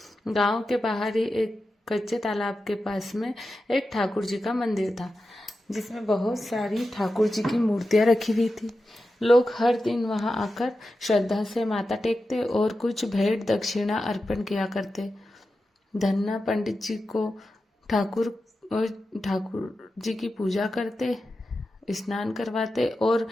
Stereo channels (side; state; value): both; normal; correlation 0.91